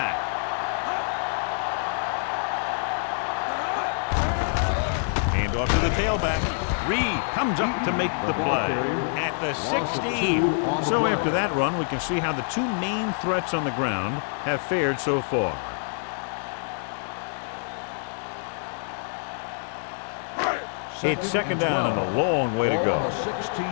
Hand off to the tailback. Reed comes up to make the play at the 16. So after that run, we can see how the 2 main threats on the ground have fared so far. It's 2nd down and a long way to go.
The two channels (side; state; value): right; silent; digital silence